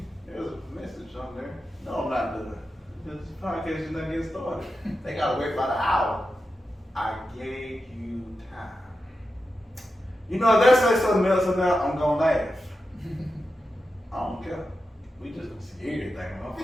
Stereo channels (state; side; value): normal; both; correlation 0.90